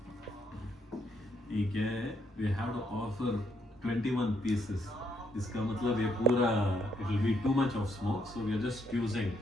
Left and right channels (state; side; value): normal; both; correlation 0.74